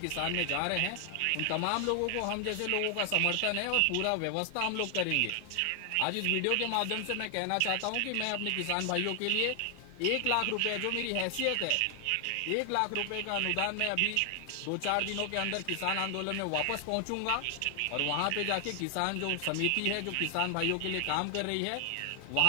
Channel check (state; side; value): different; both; correlation 0.00